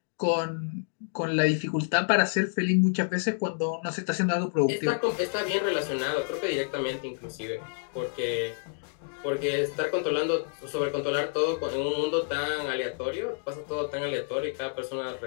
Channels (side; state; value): right; silent; 58 dB below the other